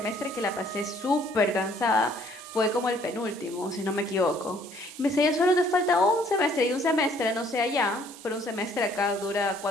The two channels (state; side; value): normal; both; correlation 0.61